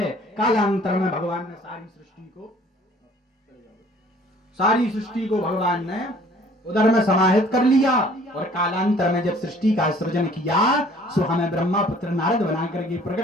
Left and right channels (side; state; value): both; normal; correlation 0.55